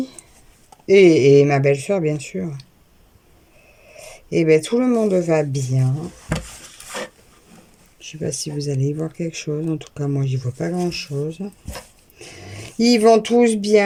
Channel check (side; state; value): both; identical; correlation 1.00